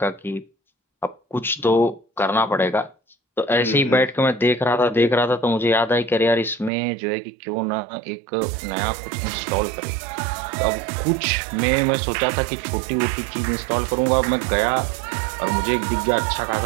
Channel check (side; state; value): left; drops out; at 6.7 s